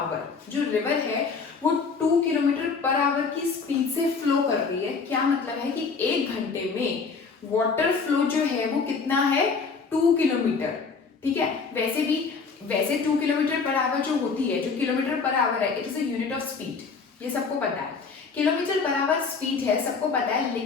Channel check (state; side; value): quieter; right; 5.0 dB